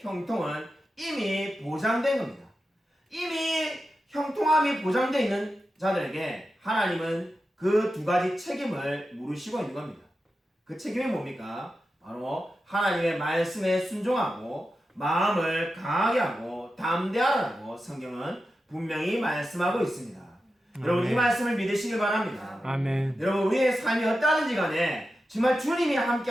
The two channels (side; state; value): both; normal; correlation 0.91